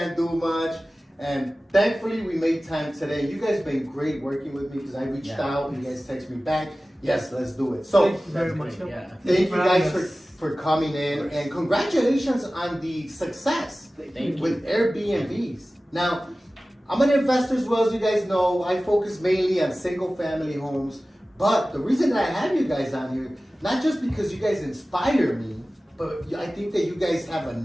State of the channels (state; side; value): normal; both; correlation 0.97